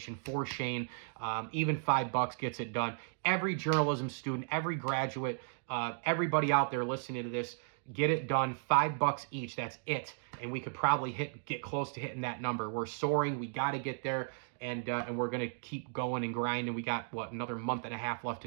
for Shane. Even $5 gets it done. Every journalism student, every graduate, everybody out there listening to this, get it done. $5 each. That's it. And we could probably get close to hitting that number. We're soaring. We got to get there. And we're going to keep going and grinding. We got, another month and a half left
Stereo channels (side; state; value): left; silent; digital silence